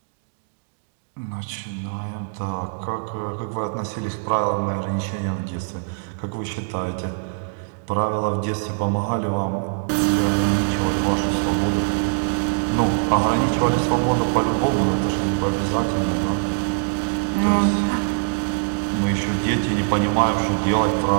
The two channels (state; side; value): silent; left; digital silence